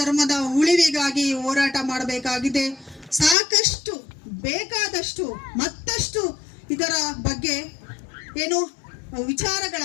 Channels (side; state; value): right; drops out; at 3.4 s